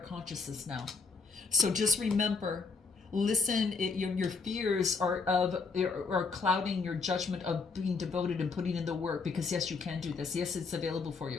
consciousness now. So just remember, listen. Your fears are clouding your judgment of being devoted and putting in the work. Because yes, you can do this. Yes, it's available for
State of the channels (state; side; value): quieter; right; 4.6 dB